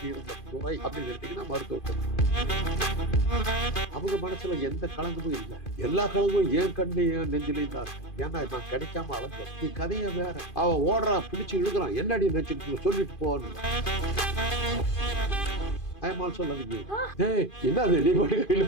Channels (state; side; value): late; right; 2.5 ms